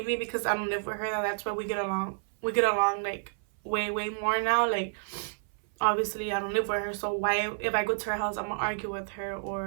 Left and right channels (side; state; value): left; silent; 56 dB below the other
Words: because I don't live with her, that's why we get along. We get along like way, way more now. Like, obviously I don't live with her, so why, if I go to her house, I'm gonna argue with her